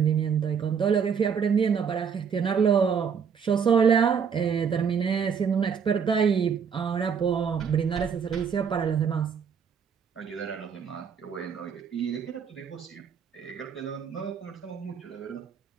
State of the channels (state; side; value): quieter; left; 6.8 dB